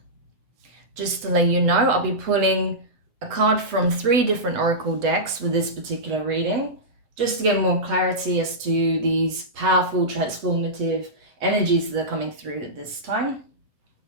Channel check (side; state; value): left; late; 8.1 ms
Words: Just to let you know, I'll be pulling a card from 3 different oracle decks with this particular reading, just to get more clarity as to these powerful, transformative energies that are coming through at this time.